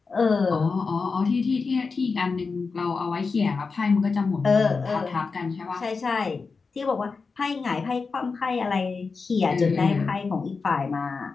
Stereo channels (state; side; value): quieter; right; 4.6 dB